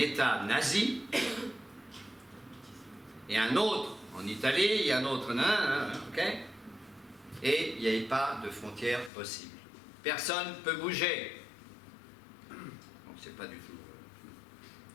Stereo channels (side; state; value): right; drops out; at 9.1 s